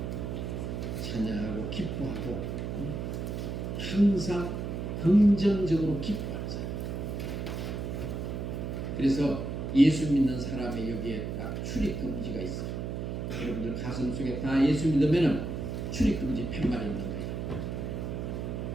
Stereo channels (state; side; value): noise; right; hum, 4 dB below the sound